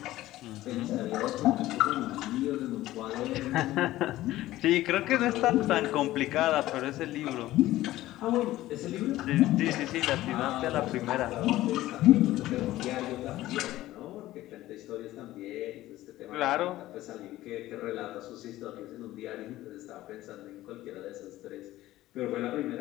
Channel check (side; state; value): right; quieter; 15.7 dB